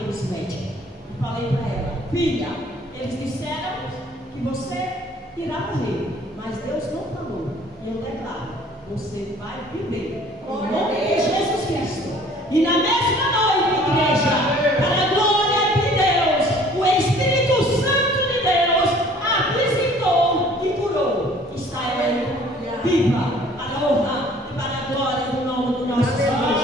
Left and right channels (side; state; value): both; normal; correlation 0.53